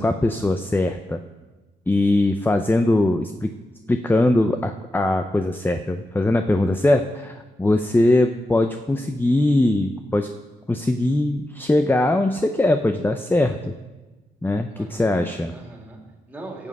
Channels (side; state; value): both; normal; correlation 0.90